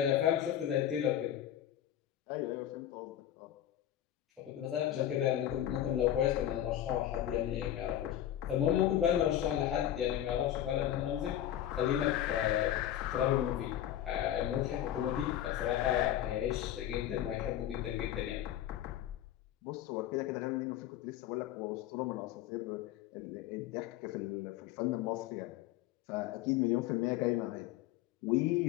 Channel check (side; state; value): right; quieter; 11.7 dB